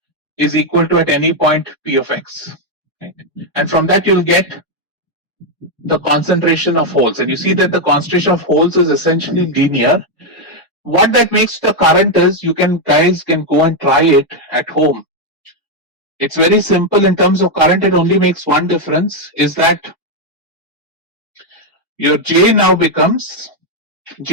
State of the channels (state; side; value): normal; both; correlation 0.02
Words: is equal to at any point P of X, right? And from that you'll get the concentration of holes, and you see that the concentration of holes is essentially linear. What that makes the current is, guys can go and try it at home. It's very simple in terms of current. It only makes one difference, is that your J naught